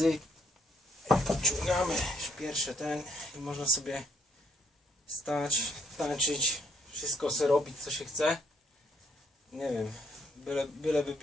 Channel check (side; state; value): both; normal; correlation 0.69